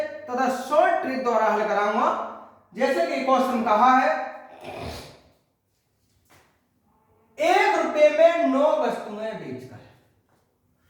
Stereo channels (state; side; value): identical; both; correlation 1.00